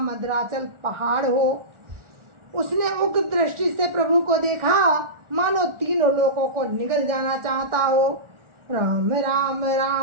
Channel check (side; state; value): left; late; 1.4 ms